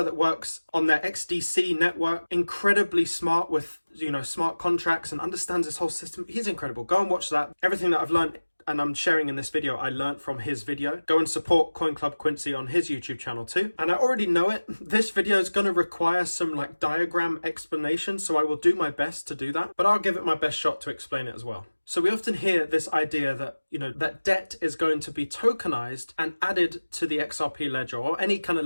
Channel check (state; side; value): inverted; both; correlation -1.00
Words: that works on their XDC network, incredibly smart with, smart contracts, and understands this whole system. He's incredible. Go and watch that. Everything that I've learned and I'm sharing in this video, I learned from his video. Go and support Coin Club Quincy on his YouTube channel too. And I already know it. This video is going to require some diagram explanation, so I will do my best to do that, but I'll give it my best shot to explain it as well. So we often hear this idea that, that debt is going to be tokenized and added to the XRP ledger or any kind